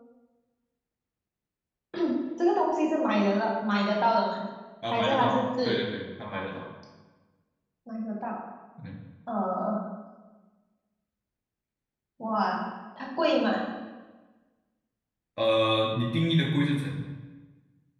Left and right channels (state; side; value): identical; both; correlation 1.00